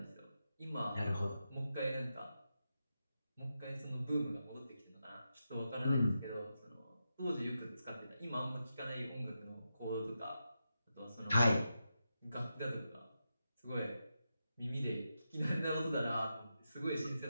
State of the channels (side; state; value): both; inverted; correlation -0.88